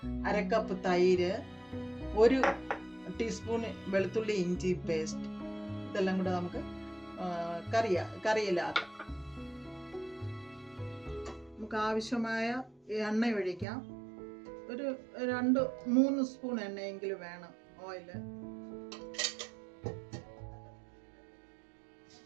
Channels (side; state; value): left; drops out; at 13.7 s